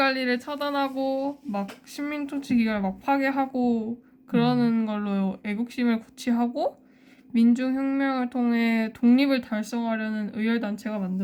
처단하고 막 식민 통치 기관을 막 파괴하고 그러는 걸로 애국심을 고취하고 민중혁명을 통해 독립을 달성하려는 의열단체가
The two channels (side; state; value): both; identical; correlation 1.00